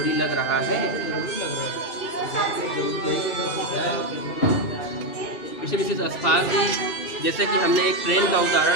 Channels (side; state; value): right; late; 2.6 ms